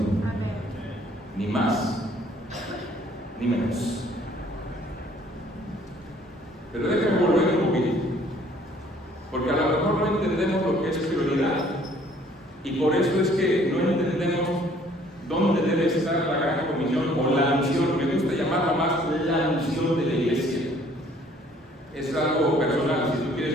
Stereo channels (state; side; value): normal; both; correlation 0.58